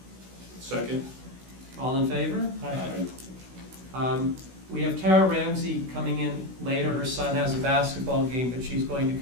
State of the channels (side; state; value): left; late; 16 ms